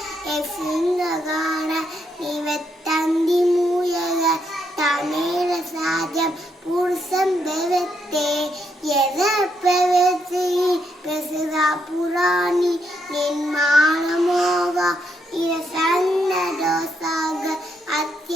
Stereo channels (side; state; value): both; normal; correlation 0.77